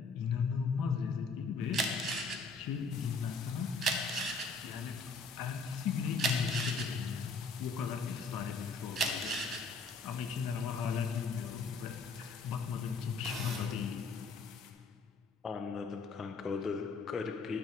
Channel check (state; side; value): quieter; right; 3.9 dB